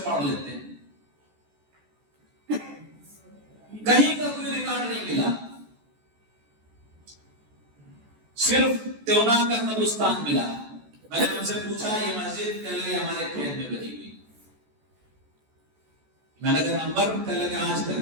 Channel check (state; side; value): late; left; 14 ms